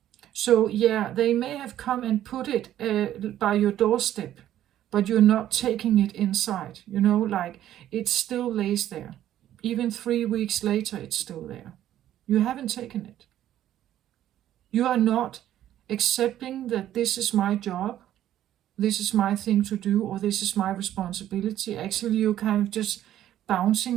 So yeah, they may have come and put it by your doorstep, but you're not taking it inside. You know, like it still lays there. Even 3 weeks later, it's still there. You haven't taken it. You are not accepting that this is my job, this is my thing to do, or this is my responsibility. Actually, you're kind of just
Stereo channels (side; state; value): left; quieter; 12.1 dB